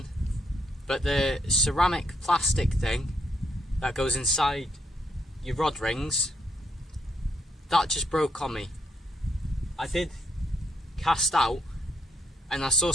but the ceramic plastic thing that goes inside your rod rings, that just broke on me. I did cast out and I saw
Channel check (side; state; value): both; normal; correlation 0.75